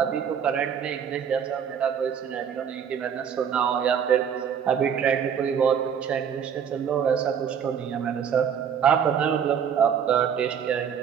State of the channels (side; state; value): left; quieter; 7.9 dB